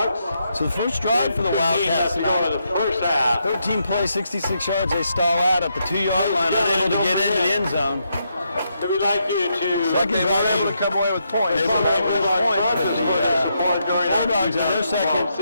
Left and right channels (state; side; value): inverted; both; correlation -0.80